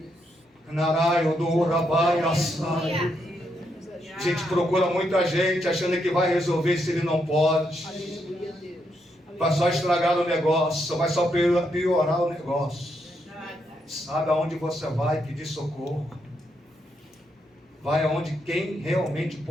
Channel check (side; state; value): both; normal; correlation 0.79